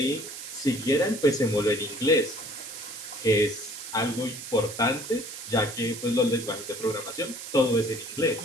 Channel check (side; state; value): right; noise; hiss, 10 dB below the sound